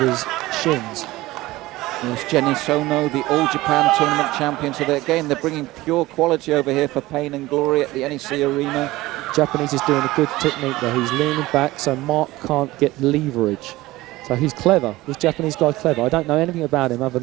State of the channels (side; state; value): left; quieter; 18.4 dB